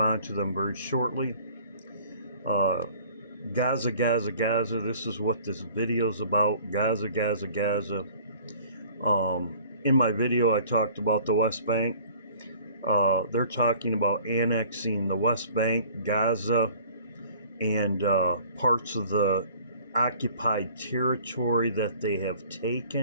to them very shortly. Gaza, Gaza, Gaza. This is what this video is about. Gaza, Gaza, Gaza. In my video, I talked about the West Bank. They're talking about annexing the West Bank, Gaza, and parts of the occupied territory that they have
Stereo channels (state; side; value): inverted; both; correlation -0.51